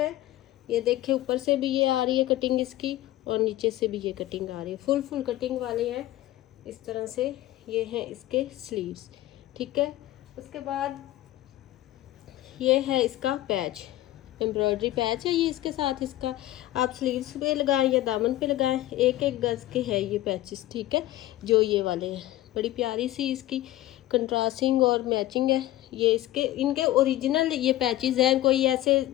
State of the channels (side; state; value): right; quieter; 15.2 dB